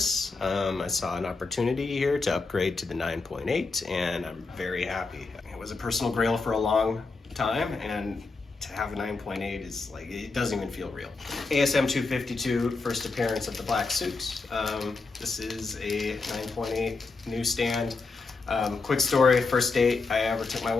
I saw an opportunity here to upgrade to the 9.8, and I'm very happy. It was a personal grail for a long time, and to have a 9.8 is like, it doesn't even feel real. ASM 252, first appearance of the Black Suit. This is a 9.8 newsstand. Quick story, first date I ever took my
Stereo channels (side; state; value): right; quieter; 4.0 dB